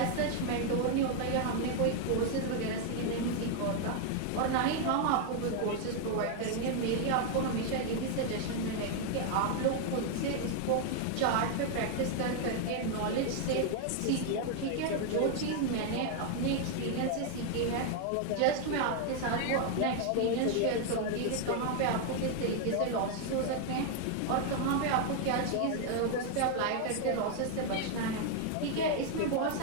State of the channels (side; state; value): both; different; correlation 0.00